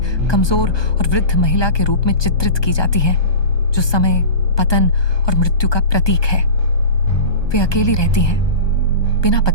कमजोर और वृद्ध महिला के रूप में चित्रित की जाती हैं, जो समय, पतन और मृत्यु का प्रतीक है। वे अकेली रहती हैं, बिना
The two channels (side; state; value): right; late; 1.2 ms